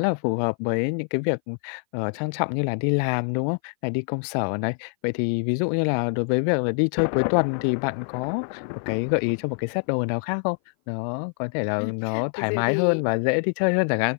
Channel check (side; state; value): right; silent; 57 dB below the other